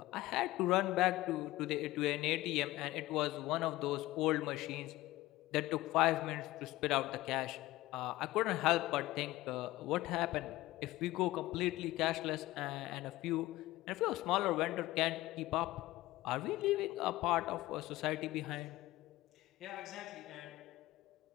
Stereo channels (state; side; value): quieter; right; 17.5 dB